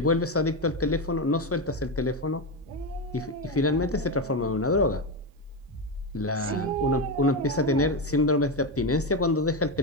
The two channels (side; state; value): both; normal; correlation 0.12